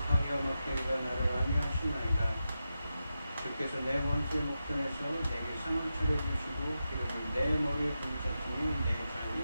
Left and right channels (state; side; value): inverted; both; correlation -0.90